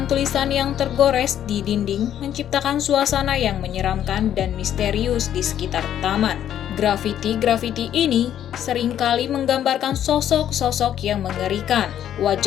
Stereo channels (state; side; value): quieter; right; 10.5 dB